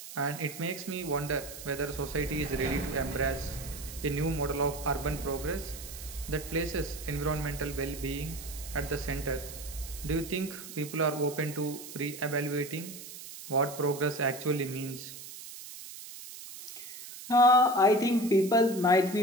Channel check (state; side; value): noise; right; hiss, 13 dB below the sound